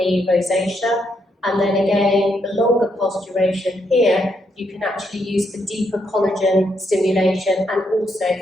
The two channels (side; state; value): both; normal; correlation 0.77